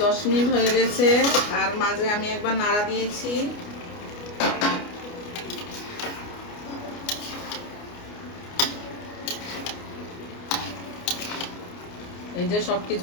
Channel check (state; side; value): late; right; 29 ms